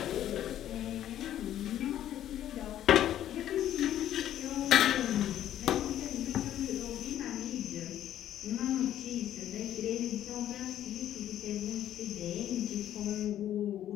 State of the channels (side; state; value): right; quieter; 11.7 dB